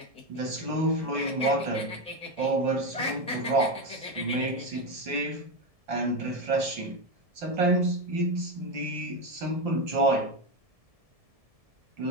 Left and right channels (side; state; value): left; late; 1.7 ms